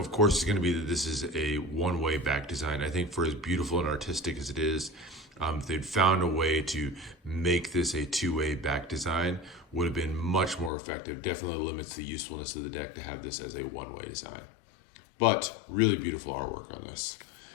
course, is going to be that this is a one-way back design. I think for as beautiful and artistic as it is, if they'd found a way to make this a two-way back design, would have been much more effective. Definitely limits the usefulness of the deck to have this as a one-way design. But really beautiful artwork on this.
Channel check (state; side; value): drops out; right; at 10.7 s